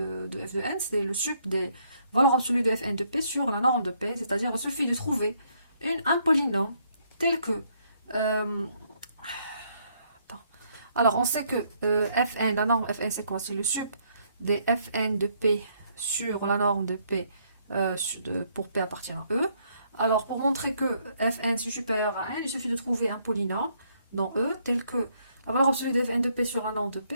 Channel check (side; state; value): both; inverted; correlation -0.70